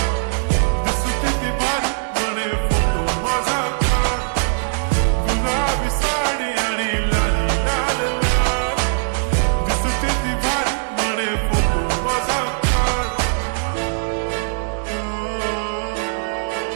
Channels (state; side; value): silent; left; digital silence